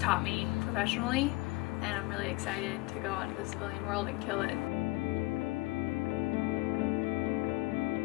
me professionally. And I'm really excited to go out into the civilian world and kill it.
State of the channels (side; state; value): right; quieter; 22.6 dB